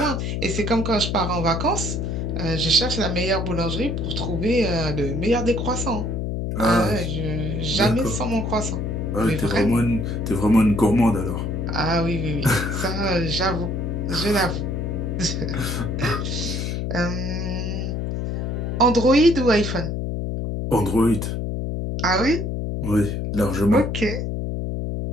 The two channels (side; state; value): left; noise; hum, 2 dB below the sound